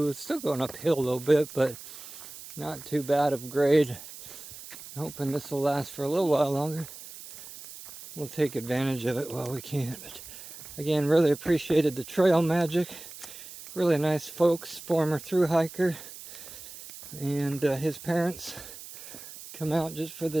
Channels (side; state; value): right; noise; hiss, 14 dB below the sound